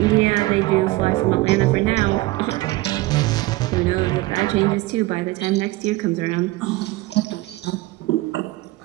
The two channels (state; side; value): quieter; left; 19.4 dB